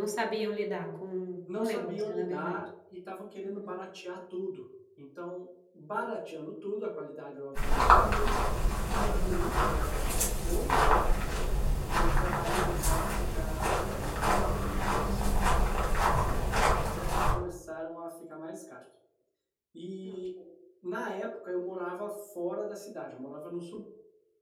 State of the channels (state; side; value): identical; both; correlation 1.00